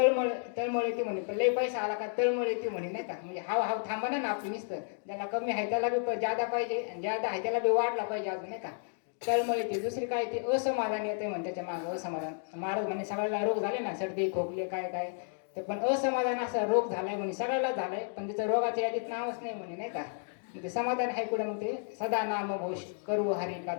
येते म्हणे, पण लय पैसा आला का तळमळ येते म्हणे नाही का. म्हणजे हाव थांबा ना आपली नुसतं, ज्याला कमी आहे त्याला बी ज्यादा पाहिजे आणि ज्यादा आहे त्याला बी वाढला पाहिजे अजून नाही का. तळमळ येते. दुसरी काय ते असमाधान येते म्हणे त्याच्या मागं असमाधान. महाराज म्हणे सगळ्याला रोग झाले ना सर्दी खोकले काय ते, पण असमाधान असा रोग झालाय म्हणे सगळ्याला झालाय, पण त्याचं रोगाच्या यादीत नावच नाही म्हणे नाही का. ते समाधान आहे कुठं मग ते सदा नाम घोष करू हरी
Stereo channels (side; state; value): right; silent; 56 dB below the other